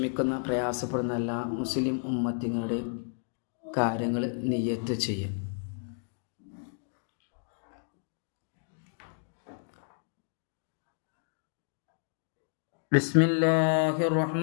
പ്രയാസപ്പെടുന്ന എല്ലാ മുസ്ലിം ഉമ്മത്തിങ്ങളുടെയും കാര്യങ്ങൾ നിയത്ത് ചെയ്യും. ബിസ്മില്ലാഹിർ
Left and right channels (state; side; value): silent; right; digital silence